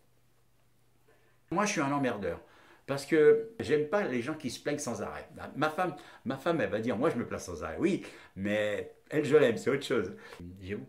Moi, je suis un emmerdeur. Parce que j'aime pas les gens qui se plaignent sans arrêt. Ma femme, elle va dire, moi je me plains sans arrêt. Oui, mais elle, je l'aime, c'est autre chose. J'ai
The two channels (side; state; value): both; identical; correlation 1.00